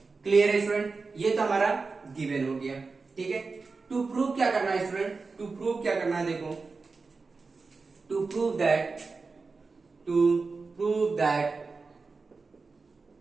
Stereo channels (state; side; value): quieter; left; 4.2 dB